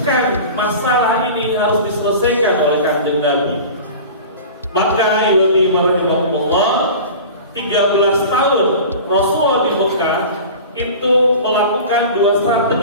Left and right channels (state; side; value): inverted; both; correlation -0.36